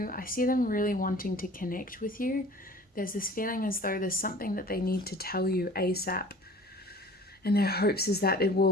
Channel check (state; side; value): normal; both; correlation 0.46